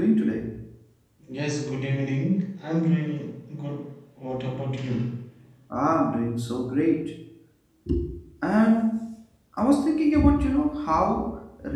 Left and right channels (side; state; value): both; identical; correlation 1.00